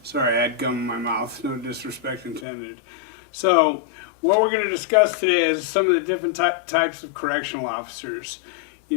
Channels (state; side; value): drops out; right; at 2.5 s